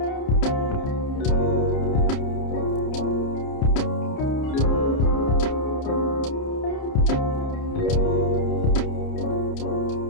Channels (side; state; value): right; late; 30 ms